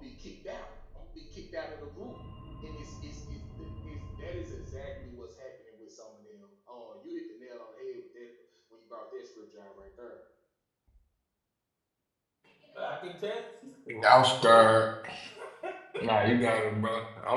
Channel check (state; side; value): identical; both; correlation 1.00